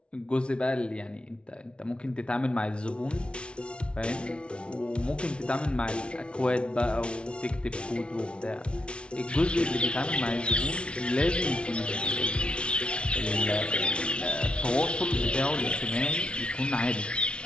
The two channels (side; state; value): right; late; 0.058 ms